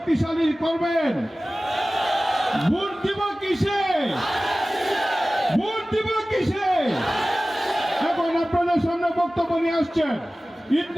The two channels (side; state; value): both; normal; correlation 0.97